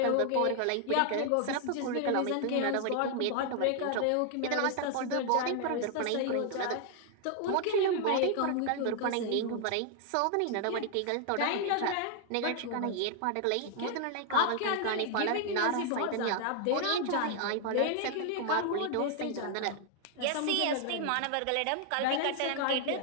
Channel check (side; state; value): both; different; correlation 0.00